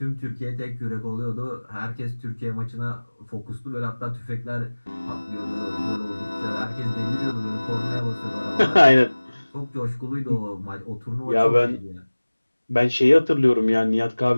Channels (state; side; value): inverted; both; correlation -1.00